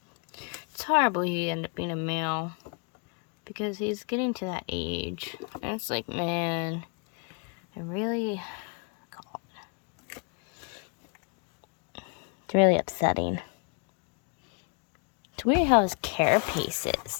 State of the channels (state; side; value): quieter; right; 34.7 dB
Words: horrible he ended up being a male. Because he's getting to that age. And it's like, man, I really... It's really upsetting. It's weird how his carapace